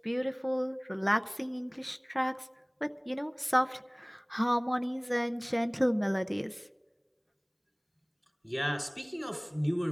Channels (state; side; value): identical; both; correlation 1.00